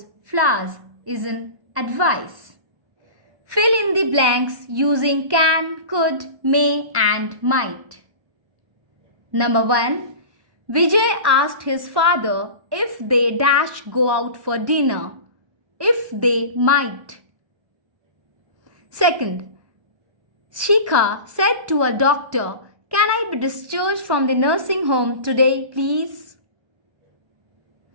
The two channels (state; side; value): late; left; 1.1 ms